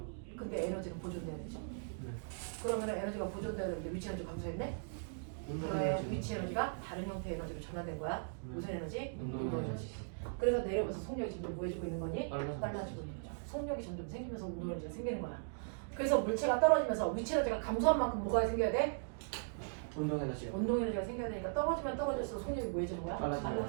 근데 에너지는 보존돼야 되죠. 네. 그러면 에너지가 보존돼야 되는데 위치 에너지 감소했네? 그러면 위치 에너지가 다른 형태의 에너지로 전환된 거야. 무슨 에너지? 운동 에너지. 그래서 내려오면서 속력이 점점 뭐해지고 있는 거니? 빨라지고 있는 거죠. 속력이 점점 생기면서 운동 에너지가 생기는 거야. 그래서 물체가 떨어지면서 위치 에너지가 감소한 만큼 뭐가 생겨야 돼? 운동 에너지요. 운동 에너지가 생겨야 되니까 떨어지면 떨어질수록 속력이 뭐해지는 거야? 빨라지는 거야.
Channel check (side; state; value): left; silent; digital silence